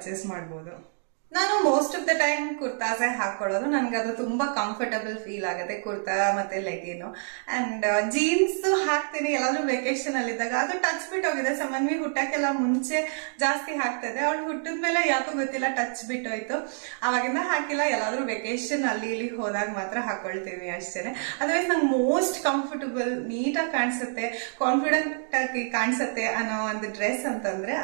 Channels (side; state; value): left; silent; digital silence